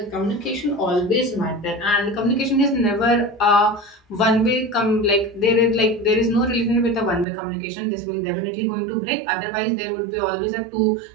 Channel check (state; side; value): drops out; left; at 7.2 s